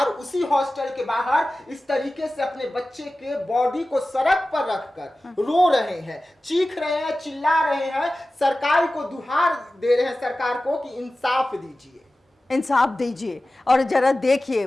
उसी हॉस्टल के बाहर इस तरीके से अपने बच्चे के बॉडी को सड़क पर रखकर रो रहे हैं, चीख रहे हैं, चिल्ला रहे हैं, सरकार को दुहार दे रहे हैं, सरकार को कि इंसाफ दीजिए, इंसाफ दीजिए। और जरा देखिए,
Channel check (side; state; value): both; normal; correlation 0.96